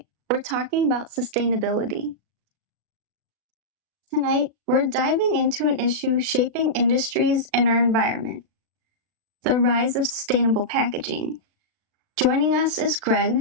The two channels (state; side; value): late; left; 36 ms